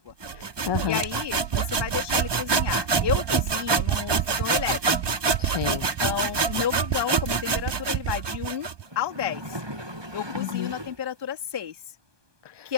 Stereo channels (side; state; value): left; late; 1.2 ms